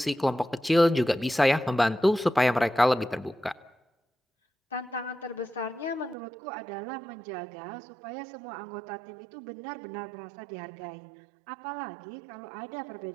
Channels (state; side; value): drops out; left; at 6.2 s